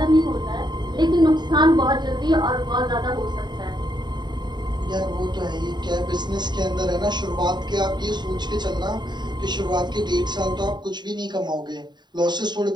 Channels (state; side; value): late; left; 0.21 ms